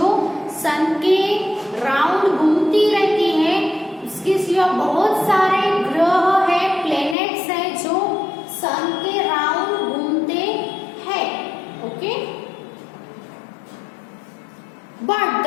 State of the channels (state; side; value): drops out; right; at 7.2 s